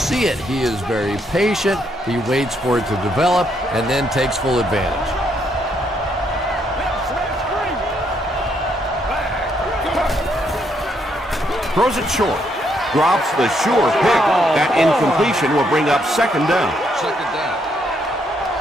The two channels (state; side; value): normal; both; correlation 0.74